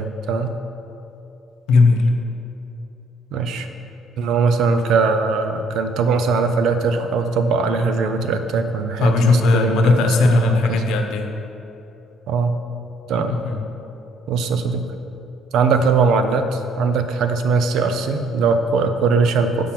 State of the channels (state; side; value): normal; both; correlation 0.65